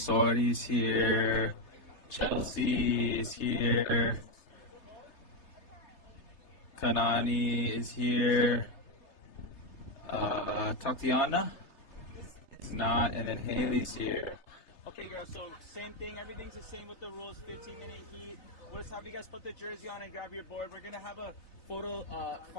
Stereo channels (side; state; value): right; late; 3.3 ms